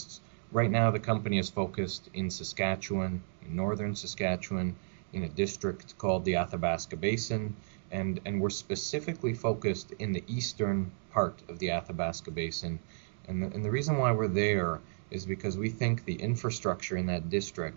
Right now, the company is focused in Saskatchewan, in northern Saskatchewan, in a district called the Athabasca Basin, and we're specifically focused in the eastern part of the Athabasca Basin. And the reason why we're there is because we think the infrastructure in that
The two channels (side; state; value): left; silent; digital silence